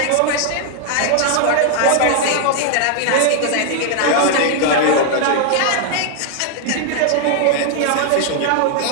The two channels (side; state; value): both; different; correlation 0.00